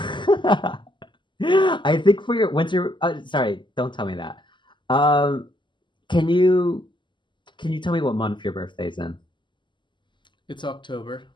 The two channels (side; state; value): right; late; 0.23 ms